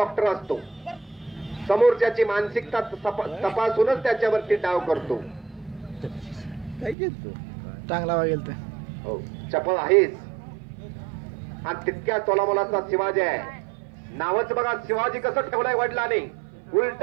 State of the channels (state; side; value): drops out; left; at 7.0 s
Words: असतो. समोरच्याची मानसिकता तपासूनच त्याच्यावरती डाव करतो. चांगला वागेल तर हो, चपळ आहेच. आणि तितक्या तोलामोलाचा शिवाजी आहे. नावच बघा, शिवाजी कसं ठेवलाय वडिलांनी. उलट